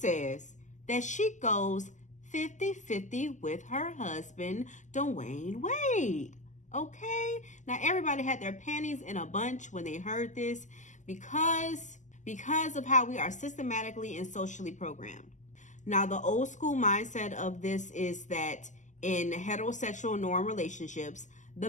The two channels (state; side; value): late; right; 0.35 ms